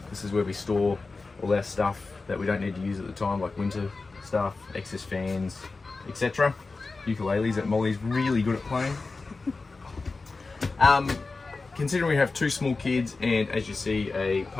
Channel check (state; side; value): quieter; right; 3.9 dB